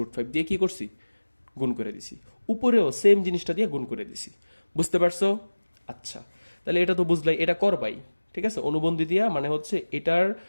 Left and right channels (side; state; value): both; inverted; correlation -1.00